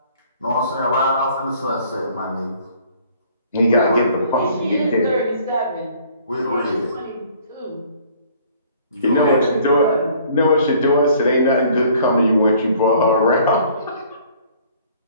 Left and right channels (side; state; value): both; inverted; correlation -0.56